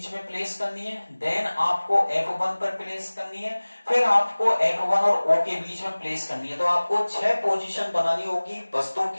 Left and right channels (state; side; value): inverted; both; correlation -1.00